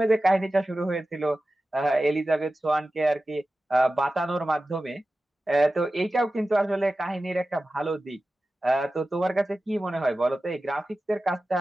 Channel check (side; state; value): both; normal; correlation 0.95